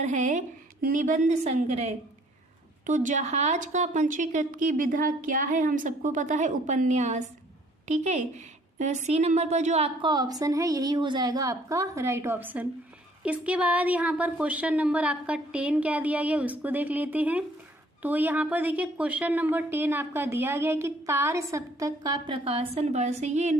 है निबंध संग्रह। तो जहाज का पंजीकृत की विधा क्या है? हम सबको पता है उपन्यास। ठीक है, सी नंबर पर जो आपका ऑप्शन है यही हो जाएगा आपका राइट ऑप्शन। इसके बाद यहाँ पर क्वेश्चन नंबर आपका 10 क्या दिया गया उसको देख लेते हैं। तो यहाँ पर देखिए क्वेश्चन नंबर 10 आपका दिया गया है कि तार सप्तक का प्रकाशन वर्ष। ये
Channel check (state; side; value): normal; both; correlation 0.59